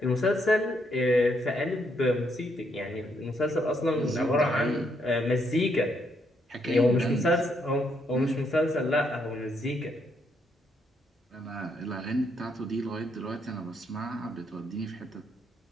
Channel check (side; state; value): both; normal; correlation 0.74